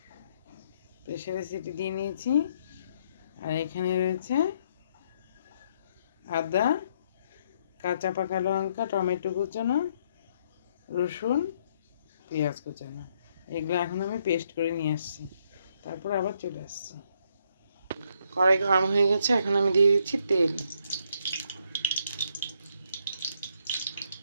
প্রেসারে সিটি দিয়ে নিয়েছি। আর এখানে রয়েছে আদা, কাঁচা পাকা লঙ্কা, টমেটো কুচানো, রসুন, পেঁয়াজ কুচানো। এগুলো এখন আমি পেস্ট করে নিয়ে আসছি, তারপর আবার চলে আসছি। কড়াই গরম হয়ে গেছে, এখন আমি দিয়ে দিচ্ছি তেল।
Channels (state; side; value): inverted; both; correlation -0.72